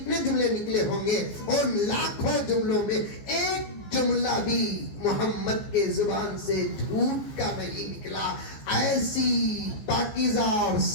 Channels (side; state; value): right; late; 14 ms